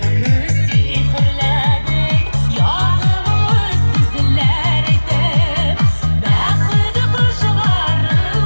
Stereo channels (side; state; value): both; inverted; correlation -1.00